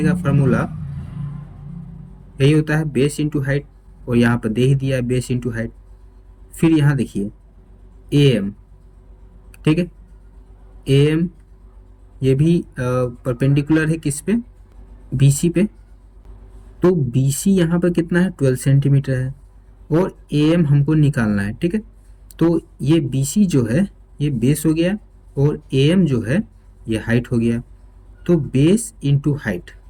का फार्मूला यही होता है बेस इंटू हाइट, और यहाँ पर दे ही दिया है बेस इंटू हाइट। फिर यहाँ देखिए AM। ठीक है, AM ये भी परपेंडिकुलर है किस पे? BC पे। तो BC यहाँ पर कितना है? 12 सेंटीमीटर है, और AM हमको निकालना है। ठीक है, तो ये BC जो है ये बेस हो गया, और AM जो है ये हाइट हो गया। तो बेस इंटू हाइट,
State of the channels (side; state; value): both; identical; correlation 1.00